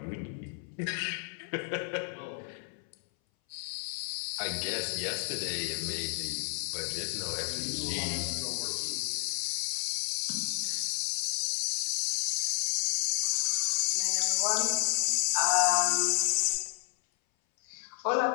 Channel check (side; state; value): right; silent; 57 dB below the other